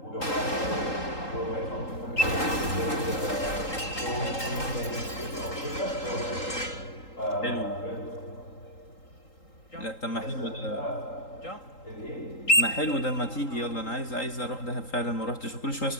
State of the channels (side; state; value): right; late; 3.8 ms